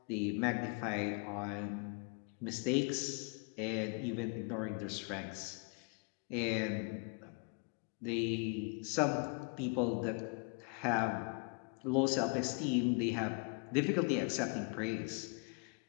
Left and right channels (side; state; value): right; quieter; 35.5 dB